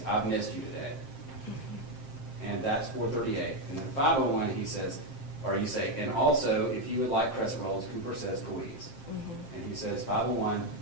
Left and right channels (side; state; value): right; late; 7.6 ms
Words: I've missed you today. And that's 4:38. And then 5:01, he says, or you say, and also, if you would like crescent rolls, Cooper says please. And he says, 5:01,